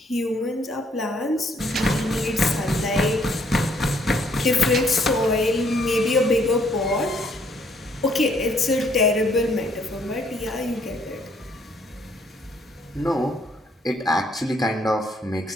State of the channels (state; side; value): normal; both; correlation 0.67